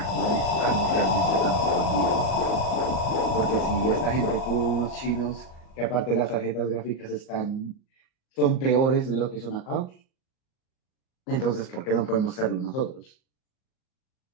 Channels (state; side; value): late; right; 38 ms